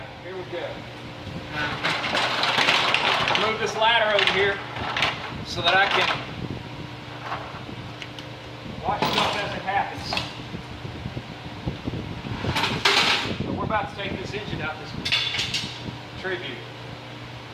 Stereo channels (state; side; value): identical; both; correlation 1.00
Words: here we go. Move this ladder over here so that I can watch stuff as it happens. So we're about to take this engine out this Tribute.